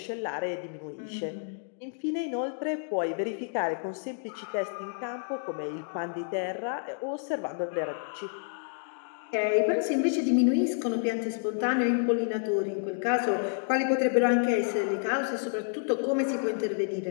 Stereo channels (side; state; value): right; silent; digital silence